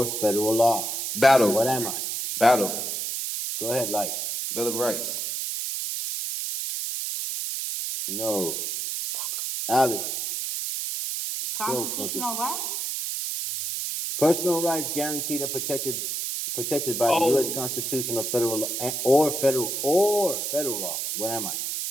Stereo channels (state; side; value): noise; right; hiss, 3 dB below the sound